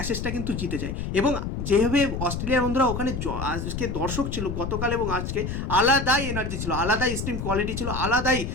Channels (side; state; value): left; noise; rumble, 4 dB below the sound